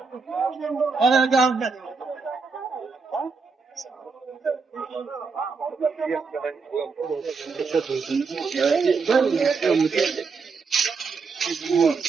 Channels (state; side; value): quieter; left; 4.8 dB